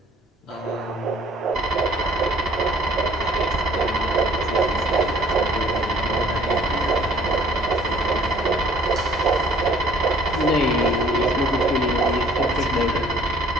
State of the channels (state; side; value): normal; both; correlation 0.55